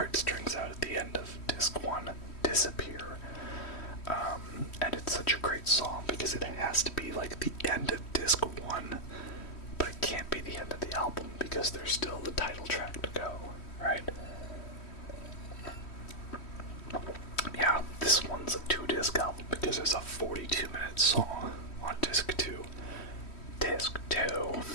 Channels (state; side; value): late; right; 3.1 ms